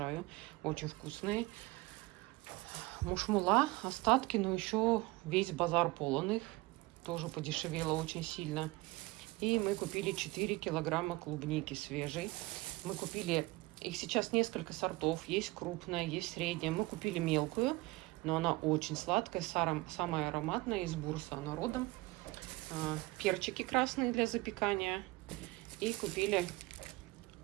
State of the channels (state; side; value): quieter; left; 21.8 dB